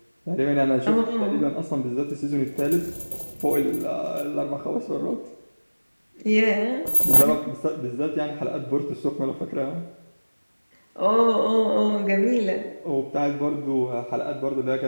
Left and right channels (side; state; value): both; inverted; correlation -1.00